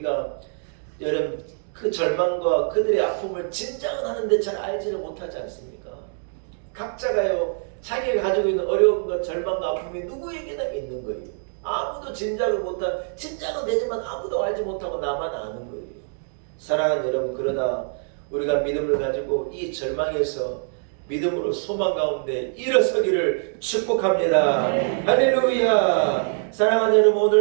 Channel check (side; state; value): left; silent; digital silence